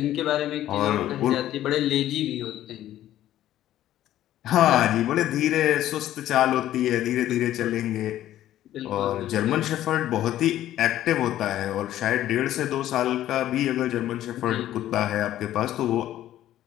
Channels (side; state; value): right; quieter; 13.0 dB